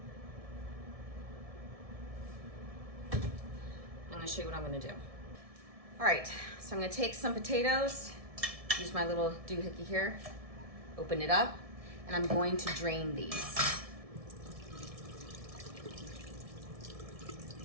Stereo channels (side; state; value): left; late; 1.7 ms